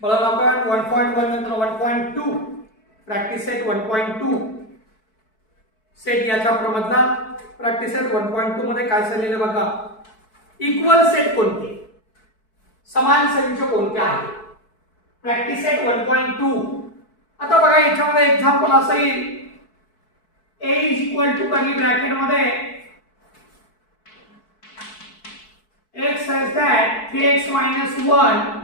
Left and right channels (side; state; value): right; late; 4.6 ms